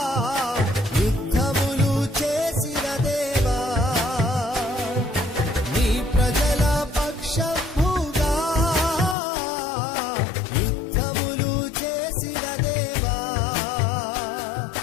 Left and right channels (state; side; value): drops out; right; at 9.2 s